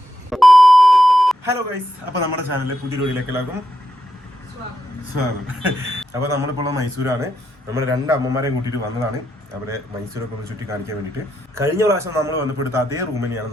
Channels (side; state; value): both; normal; correlation 0.83